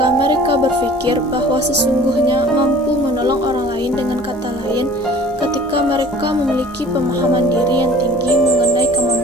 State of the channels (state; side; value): normal; both; correlation 0.48